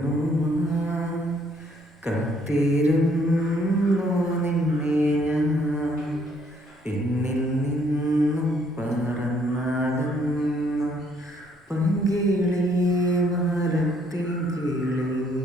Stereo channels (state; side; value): normal; both; correlation 0.66